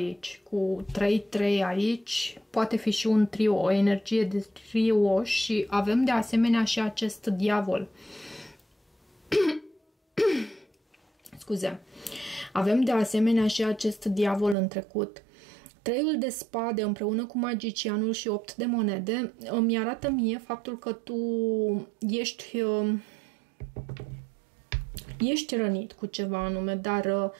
Cu 3-3 aici, poate fi și un trio, o energie de trio și avem de asemenea și acest diavol. Scuze. Avem de asemenea și acest diavol în trecut. 3-ul de spade împreună cu magicianul și 8 de monede îmi arată mie faptul că tu ești rănit cu ceva anume, dar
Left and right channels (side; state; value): left; drops out; at 14.6 s